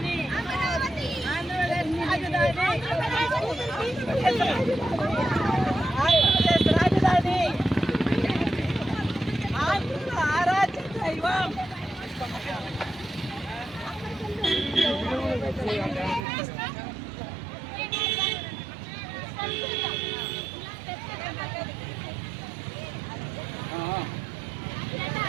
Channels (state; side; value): drops out; left; at 16.2 s